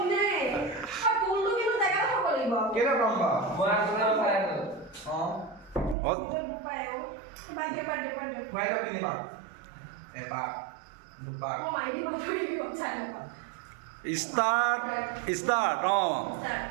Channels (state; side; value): drops out; left; at 6.0 s